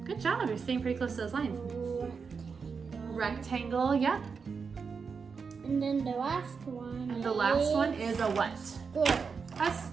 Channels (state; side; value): quieter; left; 5.5 dB